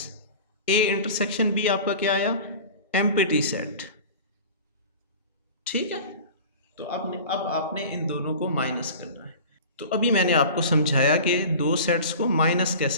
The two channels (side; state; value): both; inverted; correlation -0.38